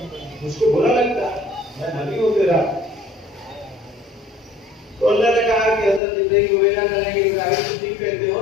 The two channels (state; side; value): drops out; right; at 6.0 s